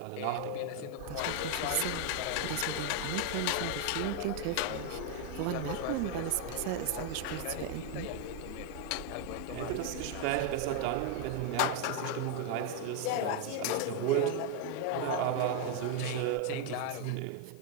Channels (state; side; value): different; both; correlation 0.01